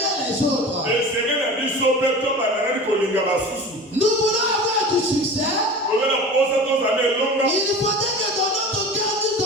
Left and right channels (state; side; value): normal; both; correlation 0.35